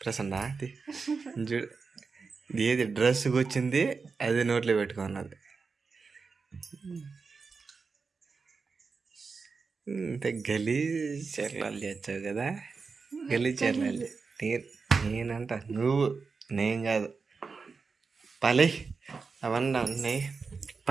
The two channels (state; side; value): quieter; left; 4.8 dB